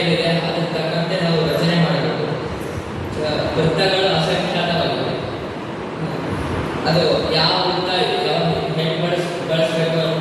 ಯಾವ ವೃತ್ತ ಯಾವ ಹೆಂಗೆ ಬಳಸಬೇಕು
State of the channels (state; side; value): identical; both; correlation 1.00